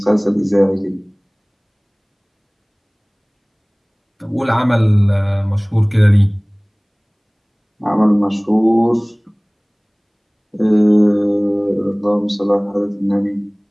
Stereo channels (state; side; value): identical; both; correlation 1.00